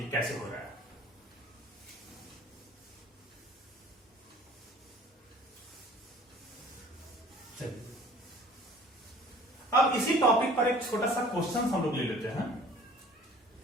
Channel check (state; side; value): normal; both; correlation 0.49